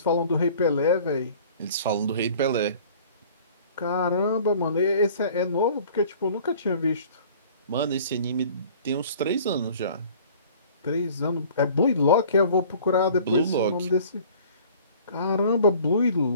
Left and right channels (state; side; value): inverted; both; correlation -0.49